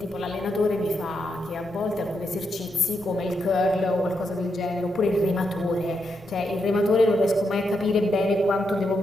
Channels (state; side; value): noise; right; rumble, 23 dB below the sound